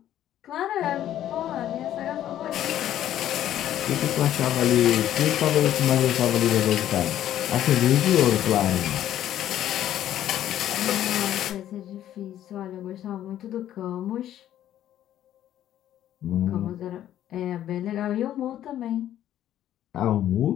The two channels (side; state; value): right; quieter; 11.8 dB